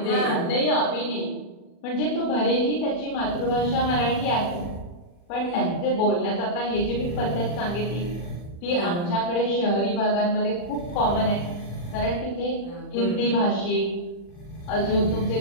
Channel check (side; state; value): right; late; 40 ms